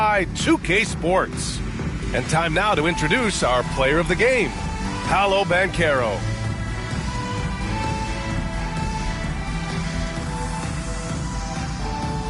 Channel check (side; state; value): both; identical; correlation 1.00